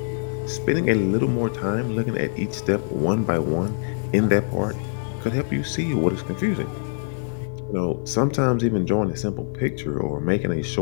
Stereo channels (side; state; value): right; silent; 58 dB below the other